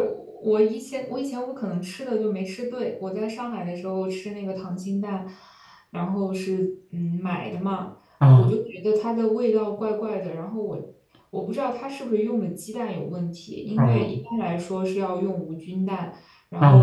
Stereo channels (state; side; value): identical; both; correlation 1.00